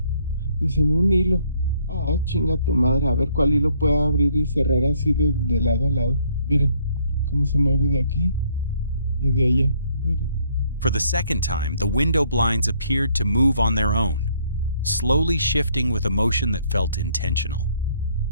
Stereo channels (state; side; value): inverted; both; correlation -0.66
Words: dicen un hilo. Ah, chinga tu madre. A ver cuál hilo puedo abrir y cerrar así de lado a lado. Miren cómo se mueve de aquí y de allá. Miren. For the second time, the window blinds appeared to move on their own, slowly shifting with a motion that felt intentional.